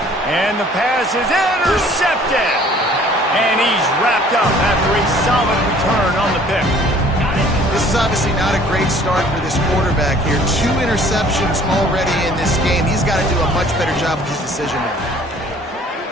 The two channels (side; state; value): both; normal; correlation 0.54